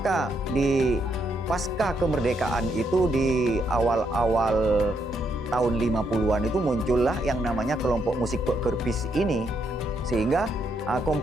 di pasca kemerdekaan itu di awal-awal tahun 50-an itu muncullah yang namanya kelompok musik Pek ini. Sehingga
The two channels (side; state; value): both; normal; correlation 0.76